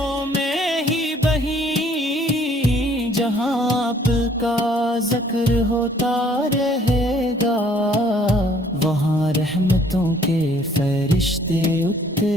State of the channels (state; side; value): normal; both; correlation 0.60